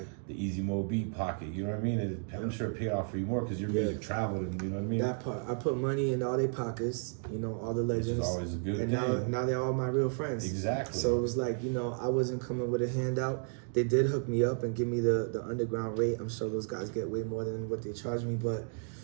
The Easy Mo Beat pocket. You know what I mean? I'm sure it paid off for you more because your music traveled, and you know what I mean. That part, I put money in all their pockets. You know, all the legends. Which is always a good thing. And now they're all my real friends. Exactly. So it was like, you know, I wasn't coming with a handout. They did hook me up and give me the underground rate. I'm sure those guys get way more than what they charge me, but.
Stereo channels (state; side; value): silent; left; 56 dB below the other